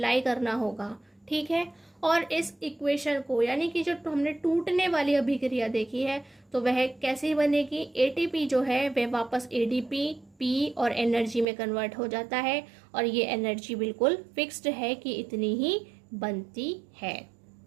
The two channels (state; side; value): drops out; left; at 11.5 s